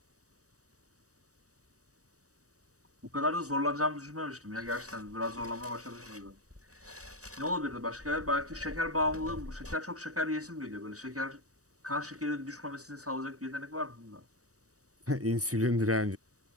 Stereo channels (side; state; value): left; late; 0.66 ms